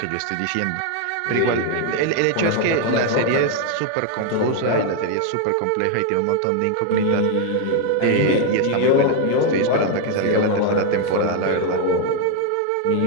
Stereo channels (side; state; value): both; different; correlation 0.00